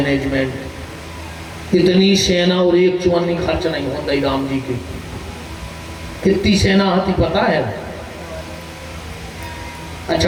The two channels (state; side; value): identical; both; correlation 1.00